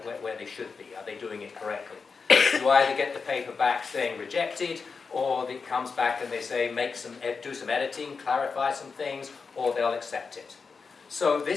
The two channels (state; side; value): quieter; right; 5.0 dB